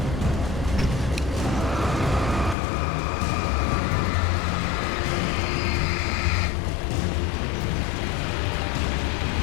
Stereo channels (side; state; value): right; drops out; at 2.6 s